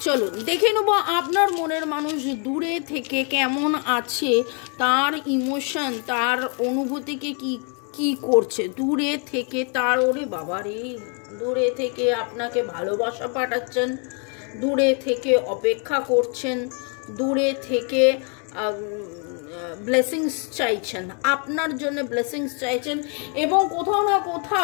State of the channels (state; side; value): quieter; right; 39.2 dB